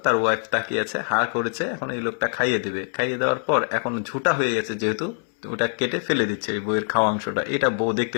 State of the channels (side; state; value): right; silent; 63 dB below the other